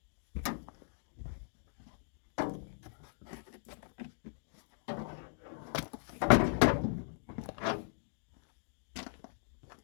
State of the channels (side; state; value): right; silent; digital silence